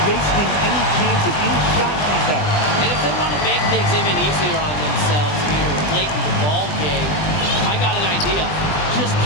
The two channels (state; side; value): late; right; 20 ms